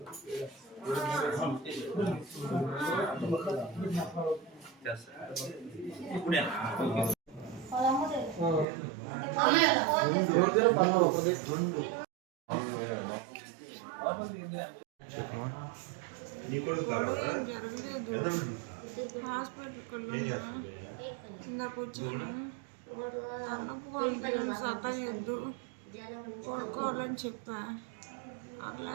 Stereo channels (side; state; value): left; drops out; at 8.7 s